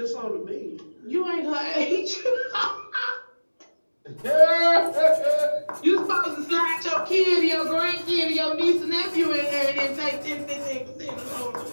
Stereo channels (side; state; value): both; inverted; correlation -1.00